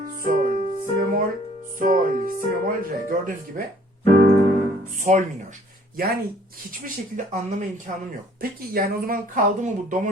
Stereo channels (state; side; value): normal; both; correlation 0.57